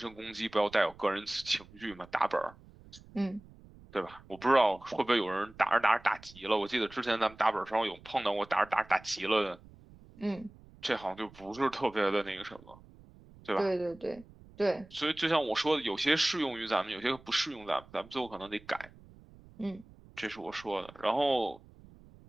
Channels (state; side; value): noise; right; rumble, 22 dB below the sound